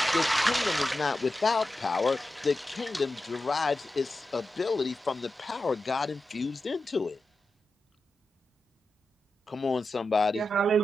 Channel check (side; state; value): both; normal; correlation 0.91